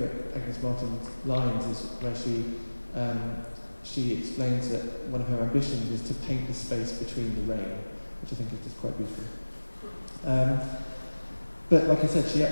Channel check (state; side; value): inverted; both; correlation -1.00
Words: Agnes Martin lines is where she explains that one of her ambitions is to paint the space between the rain, which I think is just quite beautiful. But like I said, she